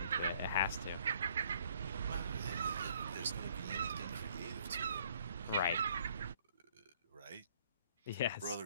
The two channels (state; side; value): inverted; both; correlation -0.62